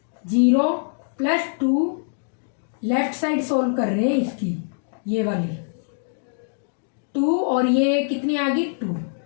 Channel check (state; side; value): silent; right; digital silence